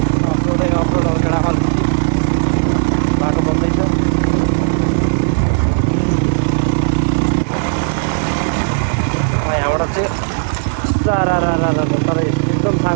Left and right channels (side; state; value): left; silent; digital silence